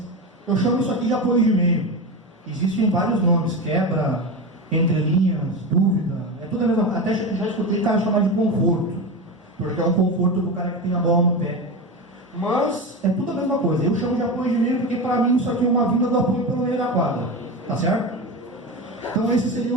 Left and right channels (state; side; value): normal; both; correlation 0.22